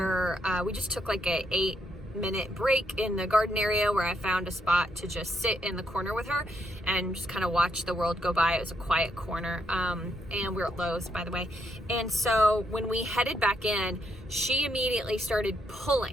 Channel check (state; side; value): normal; both; correlation 0.76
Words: we just took like a 8-minute break in the garden area where I found a spot to just sit in the corner with her and just kind of watch the world go by. It was a quiet corner, and we're at Lowe's, by the way. And so when we headed back in, she immediately started